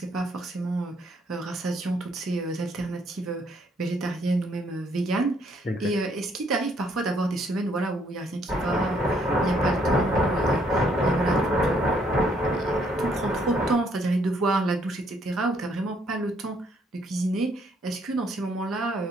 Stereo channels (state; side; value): normal; both; correlation 0.68